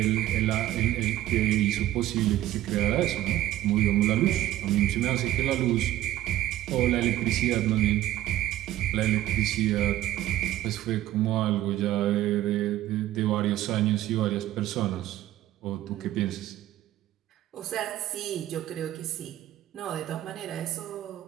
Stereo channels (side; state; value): left; quieter; 13.8 dB